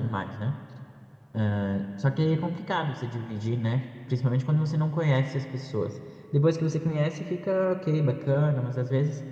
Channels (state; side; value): identical; both; correlation 1.00